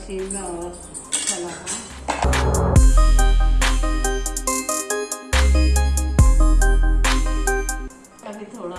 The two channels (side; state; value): both; identical; correlation 1.00